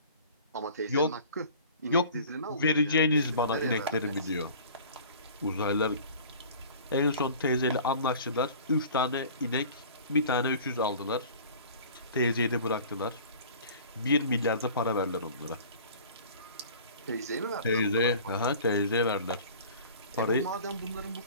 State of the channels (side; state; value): both; inverted; correlation -0.45